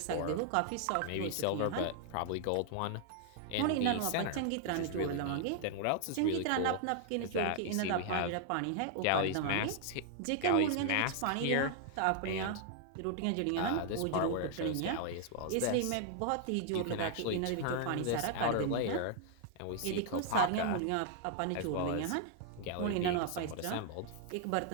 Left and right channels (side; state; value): both; different; correlation 0.00